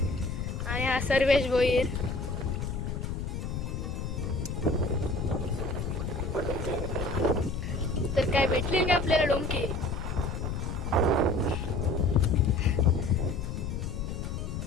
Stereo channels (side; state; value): left; noise; rumble, 4 dB below the sound